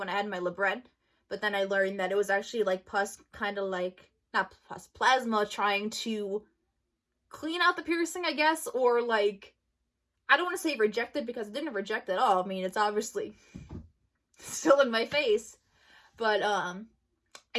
I had my libret, but then I learned that it was actually, like, pus, kind of like, not pus, plasma trying to clean out the piercing, I guess, or, like, I don't want to say reject it, because it didn't reject at all. I mean, it's obviously still in my face, but,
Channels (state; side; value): identical; both; correlation 1.00